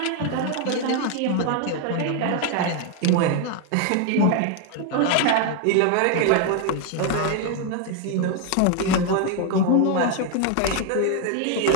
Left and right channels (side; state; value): both; different; correlation 0.01